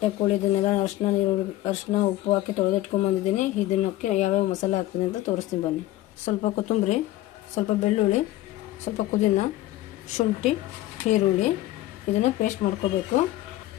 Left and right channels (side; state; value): right; quieter; 15.7 dB